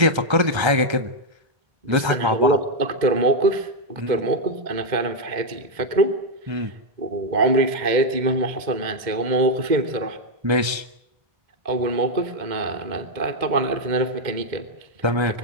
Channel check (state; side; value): late; left; 1.3 ms